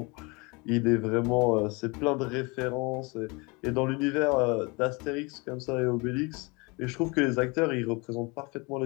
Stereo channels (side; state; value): right; quieter; 28.2 dB